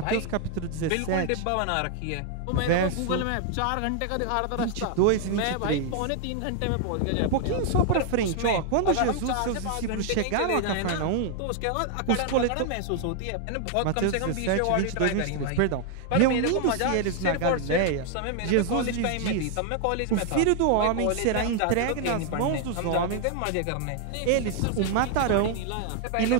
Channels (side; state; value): both; different; correlation 0.00